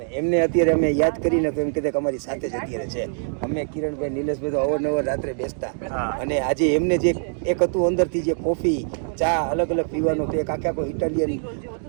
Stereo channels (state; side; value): silent; left; digital silence